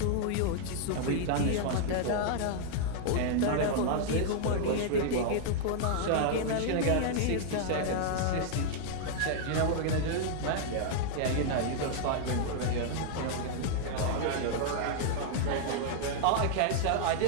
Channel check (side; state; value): both; different; correlation -0.01